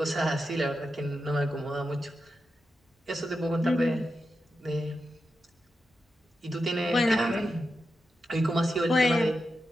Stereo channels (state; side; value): normal; both; correlation 0.89